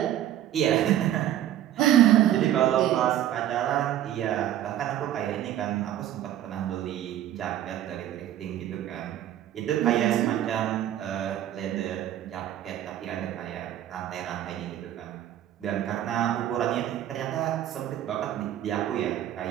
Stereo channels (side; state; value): left; quieter; 11.9 dB